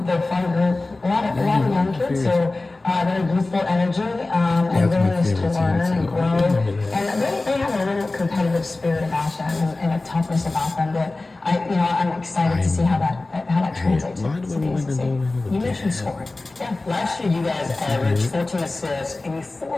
They're a fun group. A lot of young kids. So they're youthful energy and willingness to learn and grow. And they have a little competitive spirit about them and a toughness about them that I'm excited to see how that translates to the ACC. You mentioned scoring. Yeah. Last year, you guys averaged 14 assists and you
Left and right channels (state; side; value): quieter; right; 3.1 dB